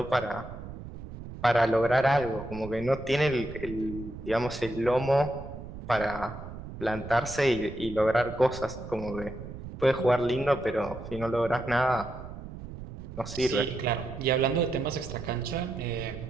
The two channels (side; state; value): right; noise; rumble, 11 dB below the sound